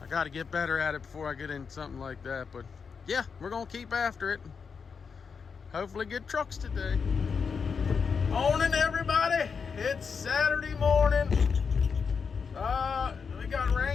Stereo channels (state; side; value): quieter; right; 5.8 dB